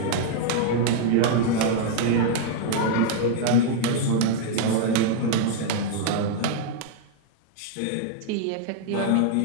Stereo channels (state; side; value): different; both; correlation 0.00